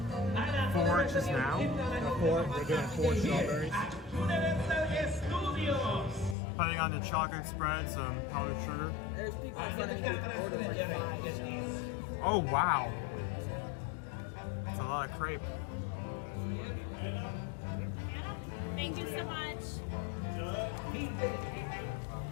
4 just now. We're doing 4 strawberries. Putting on the chocolate spread, some powdered sugar. There's people in front of me who ordered like 5. So. Oh, wow. That's a lot of crepe. Thank you so much.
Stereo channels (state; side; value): drops out; right; at 6.4 s